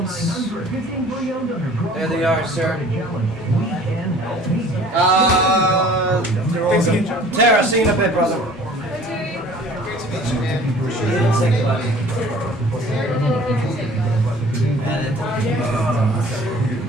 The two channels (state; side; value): normal; both; correlation 0.49